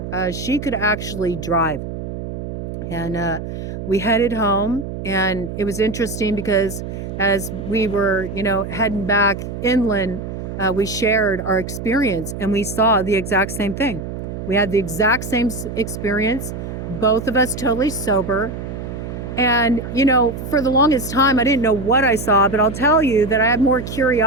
she could actually drive. And we headed home, and it was interesting because as we were, you know, heading back inland, we shared our experience, and we saw the exact same thing. We had the exact same experience, both of us totally sober. And, you know, for the longest time, I didn't know what I saw, but I'll tell you that I had more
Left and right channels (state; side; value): noise; right; hum, 7 dB below the sound